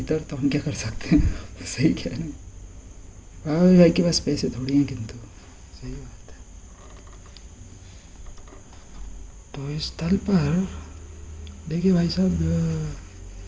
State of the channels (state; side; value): identical; both; correlation 1.00